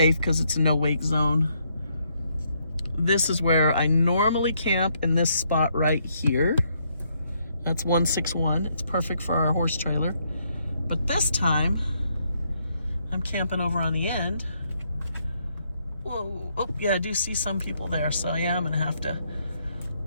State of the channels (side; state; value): both; inverted; correlation -0.74